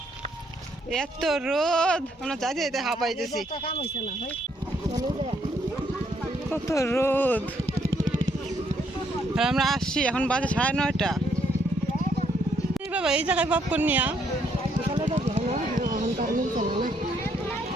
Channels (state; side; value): normal; both; correlation 0.71